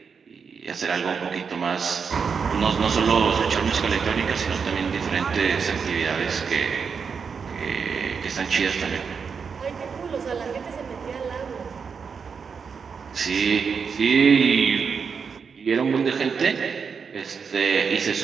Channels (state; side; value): quieter; left; 6.0 dB